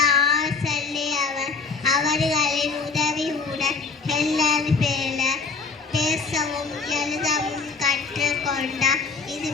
ஆசல்லி அவர்களின் உதவியுடன் ஹெல்லன் பேசவும் எழுதவும் கற்றுக்கொண்டார். இது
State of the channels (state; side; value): quieter; right; 4.6 dB